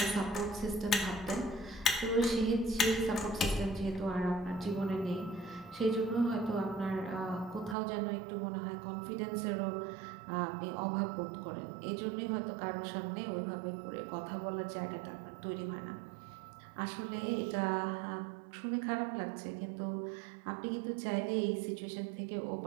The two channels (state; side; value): drops out; left; at 7.8 s